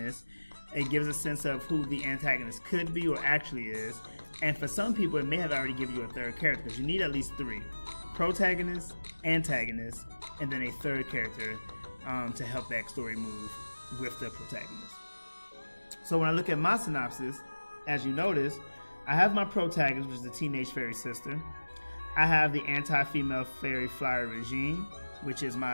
It gives a sense of who the antagonist could be or actually is. And for some people, it may have already given you a third character because you need at least three: protagonist, antagonist, and then a third character to help that story move with the protagonist. So when I look at my synopsis, as you notice, I have my protagonist, which is the teenage fairy sister. I have the anti-female fairy flyer regime, which is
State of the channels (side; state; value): both; inverted; correlation -1.00